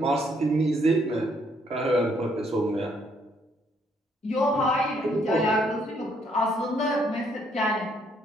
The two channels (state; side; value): normal; both; correlation 0.69